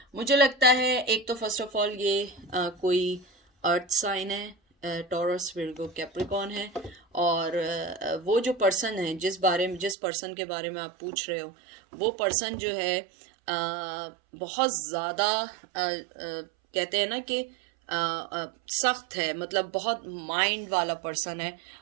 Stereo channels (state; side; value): drops out; left; at 10.0 s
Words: मुझे लगता है एक तो फर्स्ट ऑफ ऑल ये कोई अर्थ साइन है, टॉरस, विर्गो, कैप्रिकॉन है। और वो जो पर्सन है जिस पर्सन के बारे में आप पूछ रहे हो, वो पर्सन जो है बहुत ज़्यादा कहते हैं ना कि सख्त है, मतलब बहुत माइंड वाला पर्सन है।